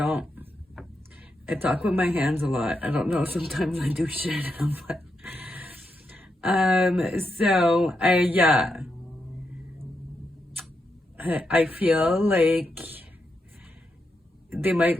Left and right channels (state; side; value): normal; both; correlation 0.84